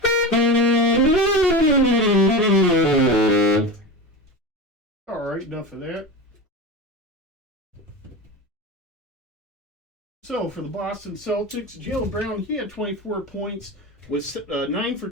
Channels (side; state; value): both; normal; correlation 0.25